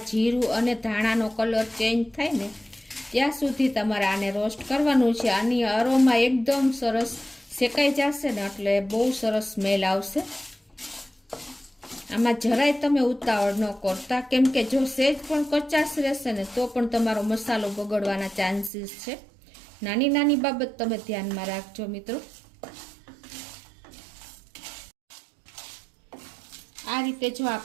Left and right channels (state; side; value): drops out; left; at 18.7 s